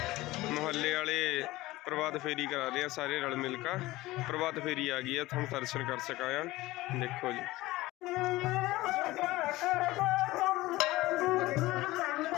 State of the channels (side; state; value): right; quieter; 18.5 dB